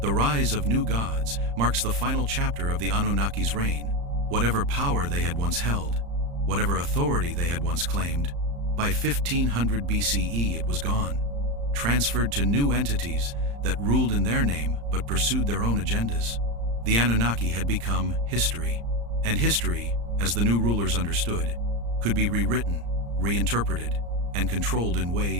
The rise of new gods marks the final chapter of the Anunnaki's reign. Whatever power they had once held, whatever authority they had once claimed, by 1500 BCE it was gone, transferred to new entities that ruled in their name but pursued their own agendas. The Anunnaki had become history, and history, as the new rulers understood, could be rewritten, reinterpreted, and controlled in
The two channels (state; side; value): late; left; 35 ms